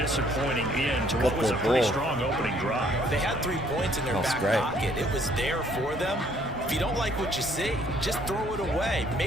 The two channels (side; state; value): both; normal; correlation 0.63